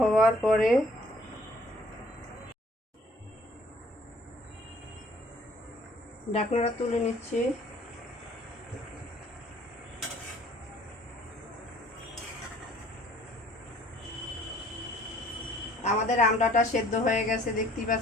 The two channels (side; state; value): both; normal; correlation 0.56